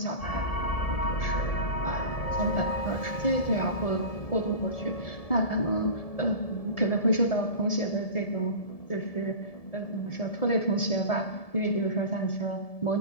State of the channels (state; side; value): late; right; 1.7 ms